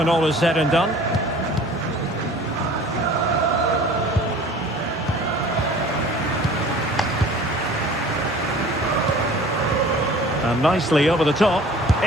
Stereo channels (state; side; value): normal; both; correlation 0.46